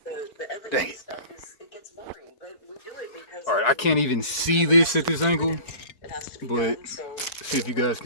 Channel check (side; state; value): right; late; 4.4 ms